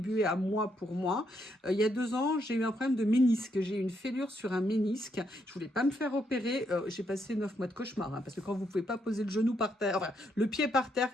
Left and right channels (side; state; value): both; normal; correlation 0.77